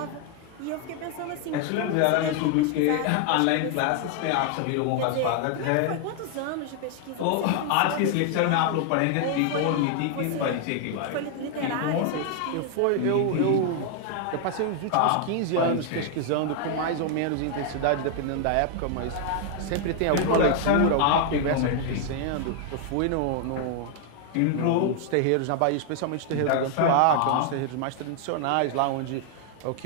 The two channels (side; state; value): both; different; correlation 0.00